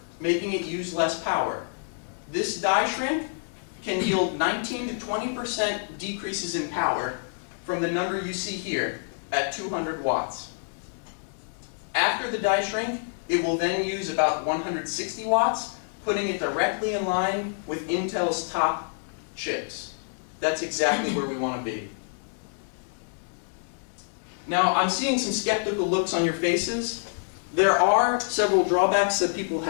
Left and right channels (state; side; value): silent; right; digital silence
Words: making it use less power. This die shrink can yield 19 to 20% decreases in power from the number you see here at 200 watts. After the die shrink, it will then use about 160 watts, putting it directly in line with Intel's top chips. That's exactly where we want to be. Now, I'm seeing some skeptical looks on your faces. There are several drawbacks that people